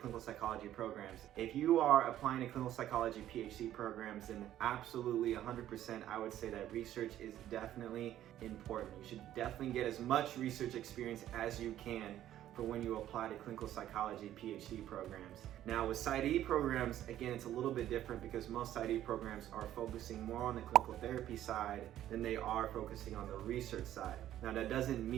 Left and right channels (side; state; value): left; quieter; 12.3 dB